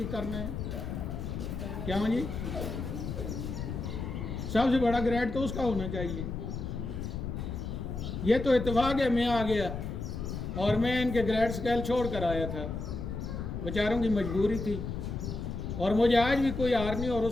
کرنا ہے۔ کیا جی؟ سب سے بڑا گریڈ تو اس کا ہونا چاہیے۔ یہ تو اتفاق ہے میں آ گیا اور میں ان کے گریڈ سکیل چھوڑ کر آیا تھا، بیچاروں کی مجبوری تھی، اور مجھے آج بھی کوئی ہار نہیں اور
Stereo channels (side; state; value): left; noise; rumble, 5 dB below the sound